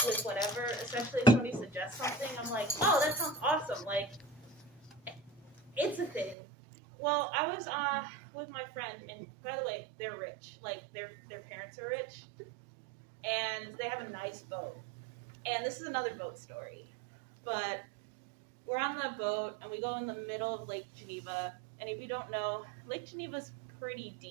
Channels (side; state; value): left; drops out; at 6.4 s